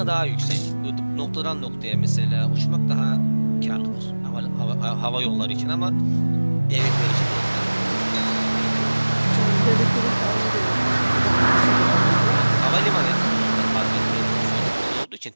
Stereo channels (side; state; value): both; inverted; correlation -1.00